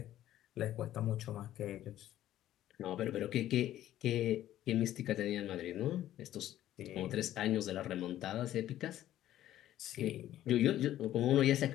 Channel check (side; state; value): right; quieter; 12.9 dB